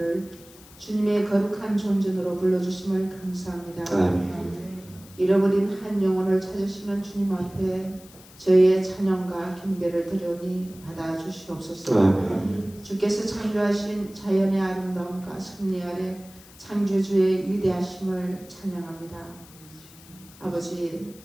주님의 거룩한 존전으로 불러주심을 감사합니다. 아멘. 잃어버린 한 영혼을 찾으시는 주님 앞에 저희의 찬양과 경배를 드려니 받아주시옵소서. 아멘. 주께서 창조하신 자연의 아름다움과 섭리 아래 창조주의 위대하심을 찬양합니다. 아버지,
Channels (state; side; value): noise; left; hiss, 22 dB below the sound